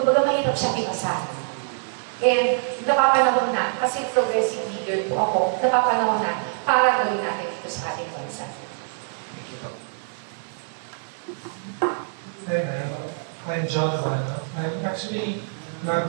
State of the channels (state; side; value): silent; left; digital silence